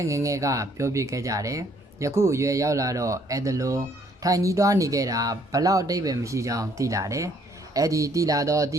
ငငယ်ကပြောပြခဲ့ကြတယ်ယခုအရွယ်ရောက်လာတော့အဲ့ဒါလိုထိုင်ကြီးသွားနေခဲ့တာဘလောက်အတိတ်ပဲမရှိကြောင်းသိလာတယ်အဲ့ဒီသိလာတော့အတ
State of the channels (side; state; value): both; normal; correlation 0.64